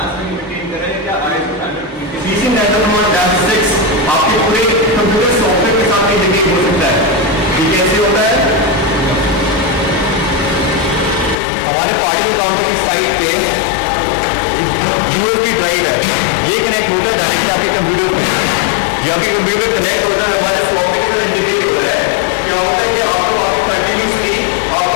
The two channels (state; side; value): drops out; right; at 11.4 s